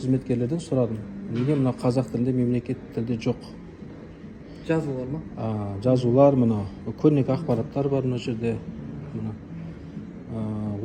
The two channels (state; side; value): identical; both; correlation 1.00